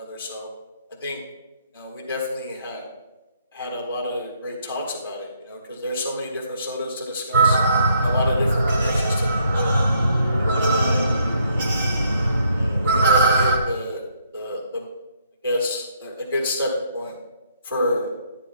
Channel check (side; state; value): both; inverted; correlation -0.70